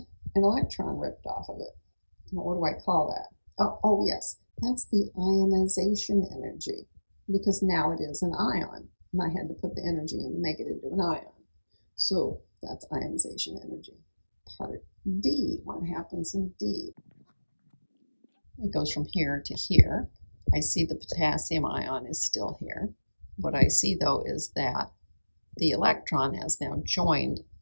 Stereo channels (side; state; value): both; inverted; correlation -1.00